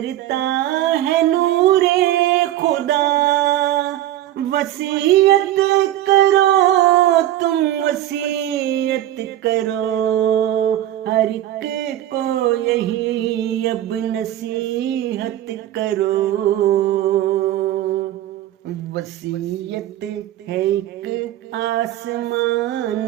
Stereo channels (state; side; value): quieter; left; 13.4 dB